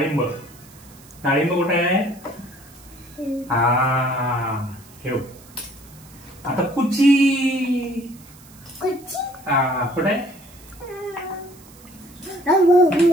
डाळिंब कुठे आहे? ठेव. आता कुची. कुठे आहे?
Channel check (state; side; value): noise; right; hiss, 23 dB below the sound